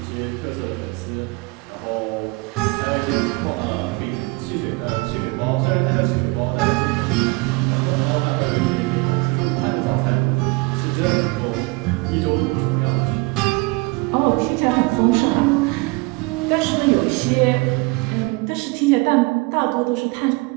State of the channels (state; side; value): quieter; left; 25.5 dB